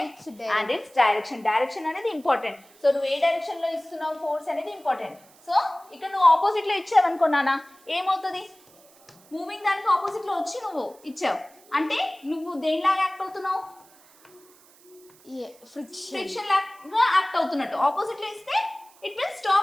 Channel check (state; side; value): noise; right; hiss, 27 dB below the sound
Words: and its direction. Direction అనేది ఇంపార్టెంట్. సో నువ్వు ఏ డైరెక్షన్ లో ఇస్తున్నావు ఫోర్స్ అనేది ఇంపార్టెంట్. సో ఇక్కడ నువ్వు ఆపోజిట్ లో ఇచ్చావనుకున్నానా ఏమవుతుంది? మూవింగ్ దానికి ఆపోజిట్లో వచ్చి నువ్వు ఇచ్చావు అంటే నువ్వు దేనిలాగా యాక్ట్ అవుతున్నావు, ఫ్రిక్షన్ ఫ్రిక్షన్ లాగా యాక్ట్ అవుతున్నట్టు. ఆపోజిట్లో ఇస్తే it will